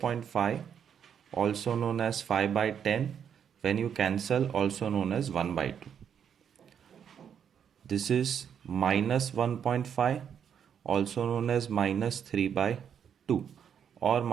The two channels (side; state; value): left; quieter; 8.1 dB